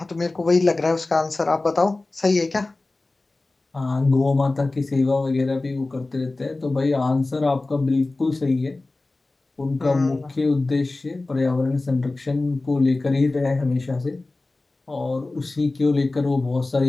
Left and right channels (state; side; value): quieter; right; 3.1 dB